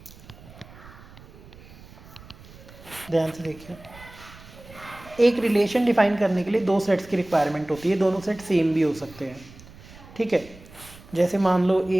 ध्यान से देखिए। एक रिलेशन डिफाइन करने के लिए दो सेट्स की रिक्वायरमेंट होती है, दोनों सेट सेम भी हो सकते हैं, ठीक है। जैसे मान लो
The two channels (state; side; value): noise; right; rumble, 20 dB below the sound